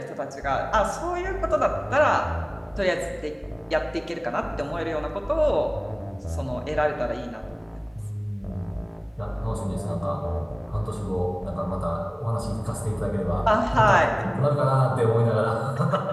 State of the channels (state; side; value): identical; both; correlation 1.00